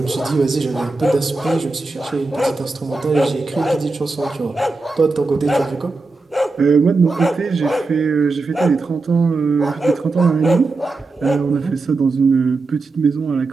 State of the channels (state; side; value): quieter; left; 3.6 dB